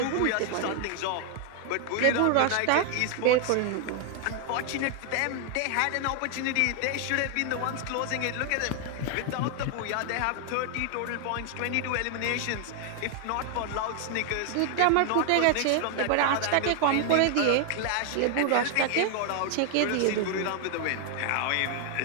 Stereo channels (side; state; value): both; different; correlation 0.00